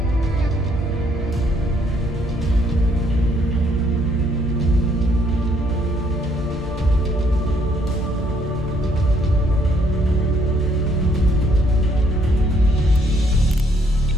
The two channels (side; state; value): both; normal; correlation 0.68